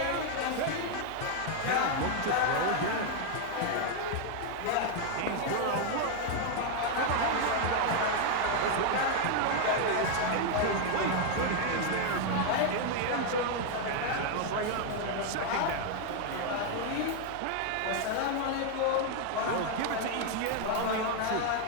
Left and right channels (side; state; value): both; different; correlation 0.00